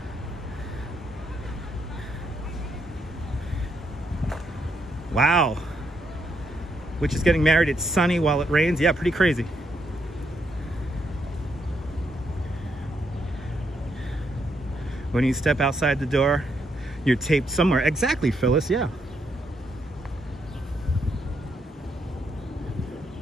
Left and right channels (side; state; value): both; normal; correlation 0.77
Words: Wow. which is getting married. It's sunny while it rains. Yeah, pretty crazy. When you step outside the door, you're taped somewhere. Exactly, Phyllis, yeah.